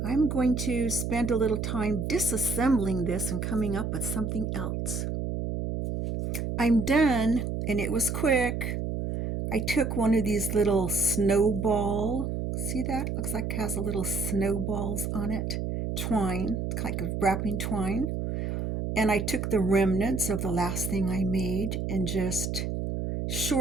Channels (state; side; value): noise; right; hum, 2 dB below the sound